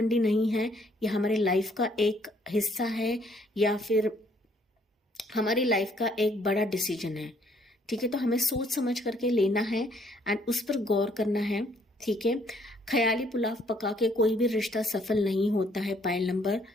नहीं है, ये हमारे लाइफ का एक हिस्सा है या फिर हमारी लाइफ का एक बड़ा डिसीजन है। ठीक है, तो हमें सोच समझ करके लेना है एंड उस पर गौर करना है। ठीक है, ख्याली पुलाव पका के कोई भी रिश्ता सफल नहीं होता है। पाइल नंबर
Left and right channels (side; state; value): both; normal; correlation 0.65